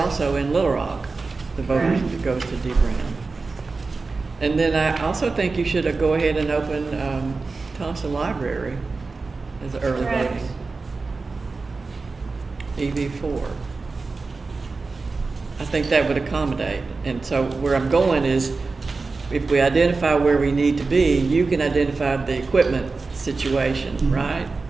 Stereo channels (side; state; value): left; quieter; 4.0 dB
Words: in Little Rock, the voters Right. that goes to D. Brown. And then I also think you should go ahead and open Thompson Library as early Correct. voting. EV4. I think that would accommodate. And so where I'm going is, if we identify where we need to be, you can identify the equipment situation, Mhm. right?